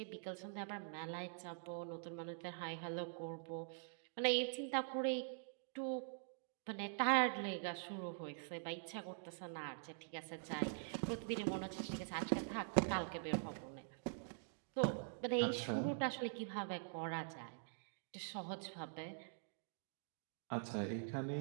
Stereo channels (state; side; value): silent; left; digital silence